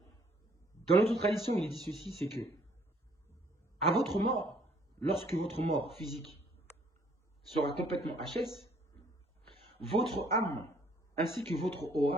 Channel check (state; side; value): normal; both; correlation 0.63